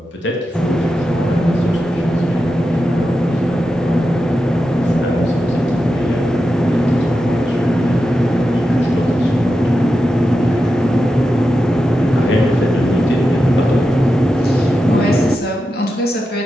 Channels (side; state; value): both; normal; correlation 0.90